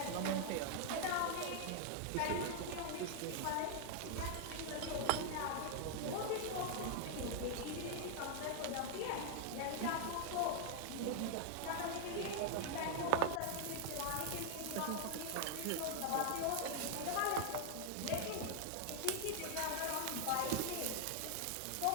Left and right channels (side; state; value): both; different; correlation 0.00